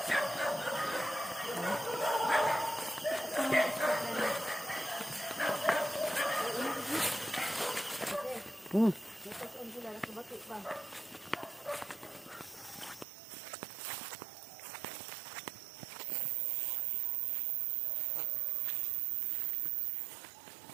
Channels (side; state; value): left; drops out; at 13.1 s